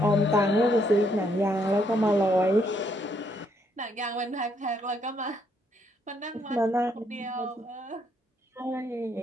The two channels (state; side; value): normal; both; correlation 0.72